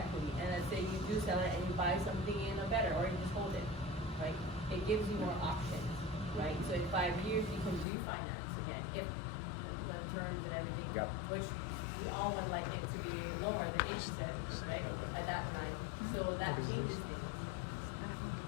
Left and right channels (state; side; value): drops out; right; at 7.9 s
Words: and let's say you do sell it and you buy something in a better, or you just hold it, right? It gives you more options, right? So in 5 years, you can refinance again, if the terms and everything, Yep. which we all would like it to be lower than 8%, right, at that time. So that changes things.